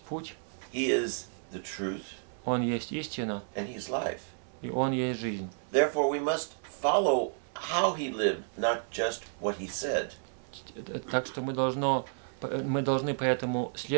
путь, He is the truth, Он есть истина, and He's life. и Он есть жизнь. Therefore we must follow how He lived, not just what He said. Так что мы должны поэтому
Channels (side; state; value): left; silent; 57 dB below the other